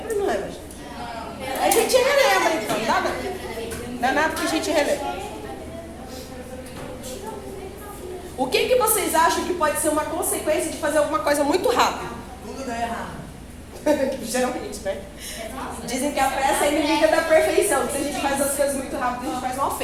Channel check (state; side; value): identical; both; correlation 1.00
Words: ou não lembra, gente? A gente relembra então, tá? Não é nada que a gente relembra. O que vocês acham que pode ser uma consequência de fazer alguma coisa muito rápido? Tudo dá errado. Geralmente, né? Dizem que a pressa é inimiga da perfeição. Se a gente faz as coisas muito rápido, a gente faz mal